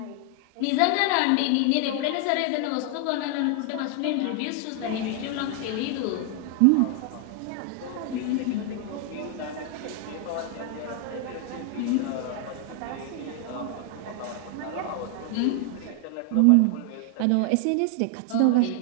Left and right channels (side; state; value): both; different; correlation 0.00